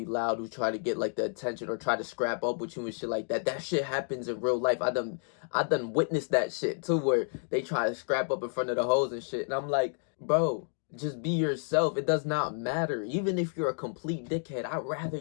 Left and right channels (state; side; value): silent; right; 57 dB below the other